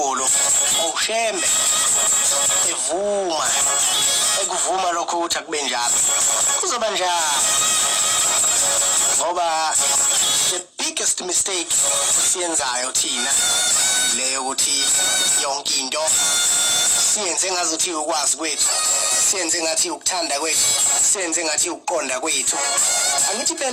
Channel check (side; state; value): both; identical; correlation 1.00